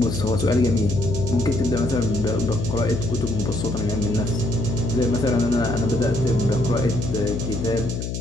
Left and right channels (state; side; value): noise; left; hum, 4 dB below the sound